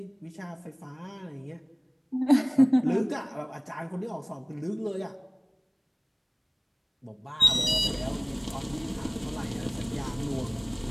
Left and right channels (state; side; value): identical; both; correlation 1.00